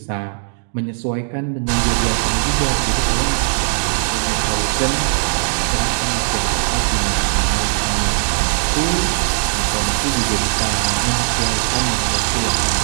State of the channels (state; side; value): silent; left; digital silence